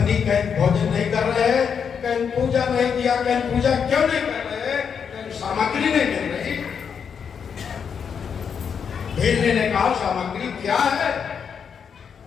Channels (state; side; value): quieter; right; 6.9 dB